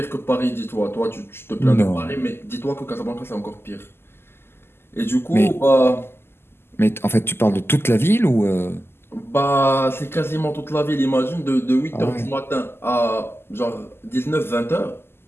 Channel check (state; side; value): late; right; 0.12 ms